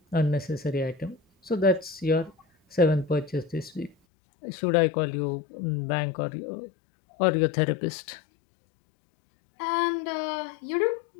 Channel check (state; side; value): drops out; right; at 4.0 s